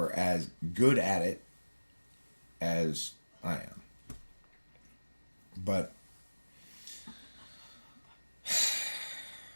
as good at it as I am. But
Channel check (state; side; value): inverted; both; correlation -1.00